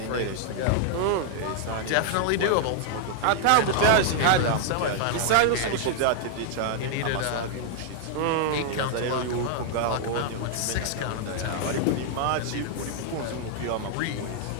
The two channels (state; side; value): different; both; correlation 0.00